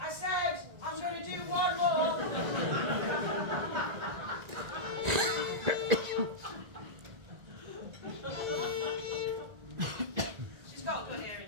I said I'm going to do one more. She's got a good hearing,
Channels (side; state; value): left; late; 1.9 ms